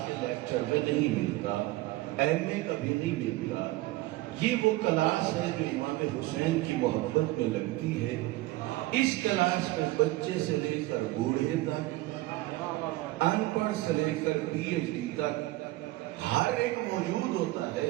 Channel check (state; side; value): quieter; left; 18.6 dB